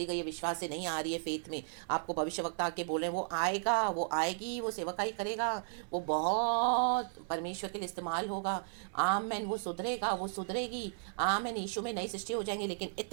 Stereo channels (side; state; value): left; silent; 54 dB below the other